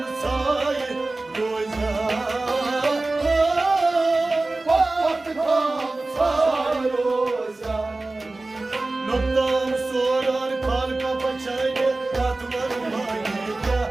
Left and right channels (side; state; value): left; quieter; 3.1 dB